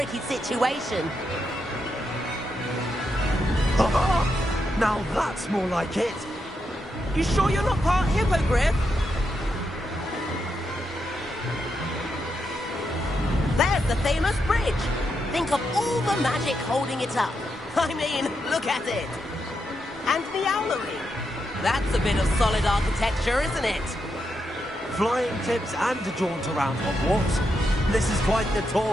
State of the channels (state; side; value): normal; both; correlation 0.83